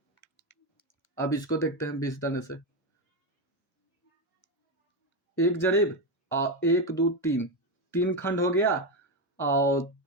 अब इसको देखते हैं 20 दाने से, 1 जरीब और 1 2 3 खंड हो गया, और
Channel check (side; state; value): both; normal; correlation 0.10